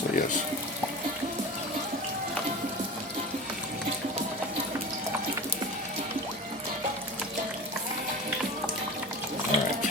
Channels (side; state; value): both; normal; correlation 0.32